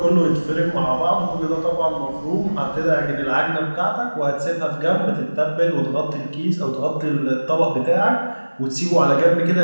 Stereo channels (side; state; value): both; inverted; correlation -1.00